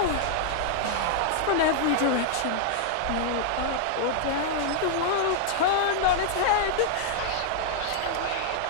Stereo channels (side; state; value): both; different; correlation -0.01